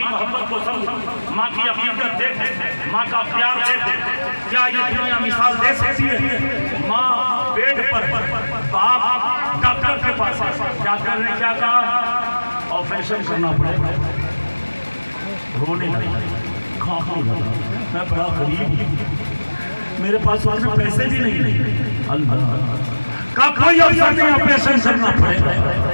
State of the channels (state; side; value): inverted; both; correlation -1.00